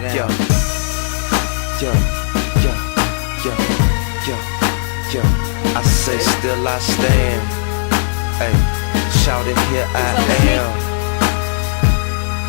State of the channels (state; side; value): silent; right; digital silence